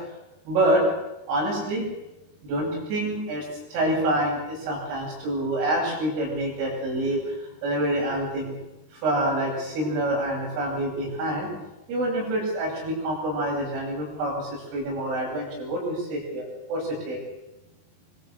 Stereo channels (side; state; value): left; late; 20 ms